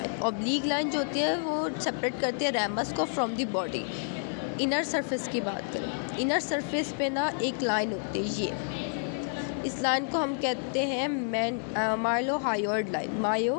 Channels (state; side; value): silent; right; 58 dB below the other